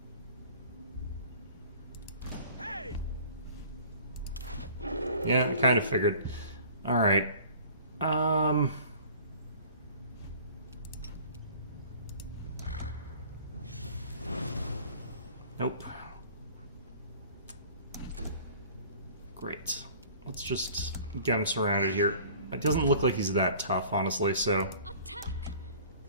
Yeah, I kind of figured. Alright. Nope. Great. Let's just get him surrounded here. It doesn't look like he's that tough, honestly, so... Attack!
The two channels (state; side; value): inverted; both; correlation -0.48